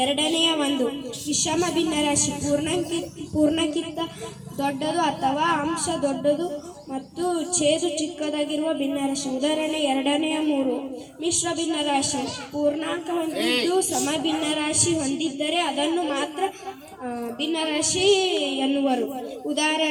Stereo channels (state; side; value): identical; both; correlation 1.00